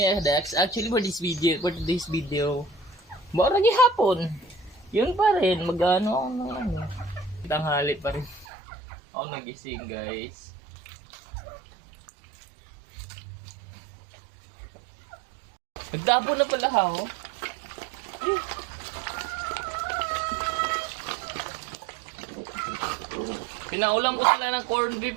mga Dax. Actually for today's video, mura hapon. Yun pa rin, mag-ano ako ng ano. Tanghali pa rin. Ako nagising guys. Nagtapo na pala ako. Pinaulang ko sila ng corned beef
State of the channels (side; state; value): left; drops out; at 8.5 s